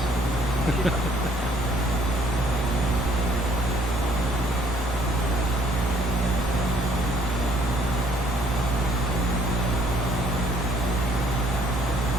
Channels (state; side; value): normal; both; correlation 0.62